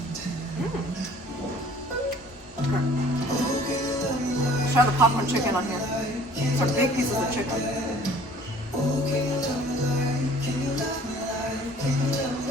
tender. Try the popcorn chicken on here. Some big pieces of chicken.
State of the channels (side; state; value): both; normal; correlation 0.52